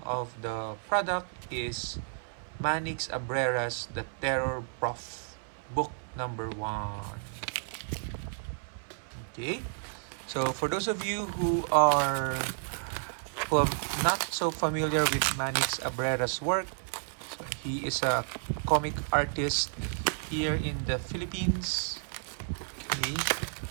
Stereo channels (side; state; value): left; silent; 57 dB below the other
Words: of the product is Manix Abrera's The Terror Prof, book number 1. Okay, so for those of you who are not so familiar with Manix Abrera's work, he is a comic artist here in the Philippines. Okay.